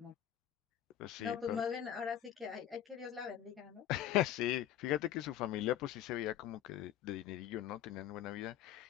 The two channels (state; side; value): quieter; right; 11.1 dB